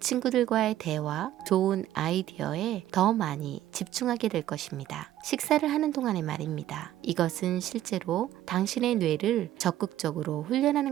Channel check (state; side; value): quieter; left; 13.0 dB